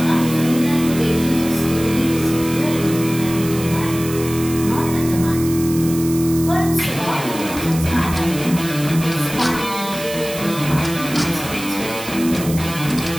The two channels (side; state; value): right; noise; hiss, 11 dB below the sound